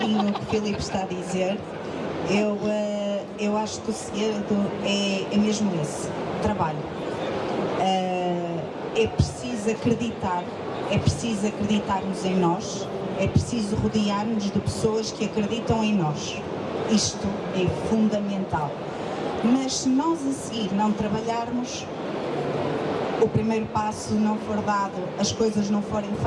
o que o Filipe está a dizer, eu acho que o segredo é mesmo esse, trabalho. É preciso acreditarmos em nós, é preciso rodear-nos de pessoas que acreditam em nós. Isto é fundamental. Mas se nós a seguir não trabalharmos, o primeiro passo não for dado, as coisas não forem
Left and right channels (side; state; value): both; identical; correlation 1.00